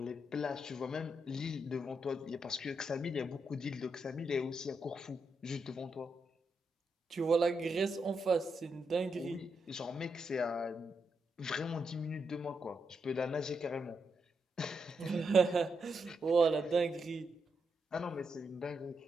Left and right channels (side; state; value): both; normal; correlation 0.82